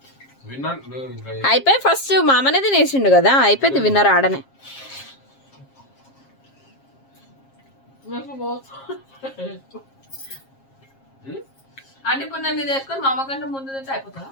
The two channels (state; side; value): late; right; 7.4 ms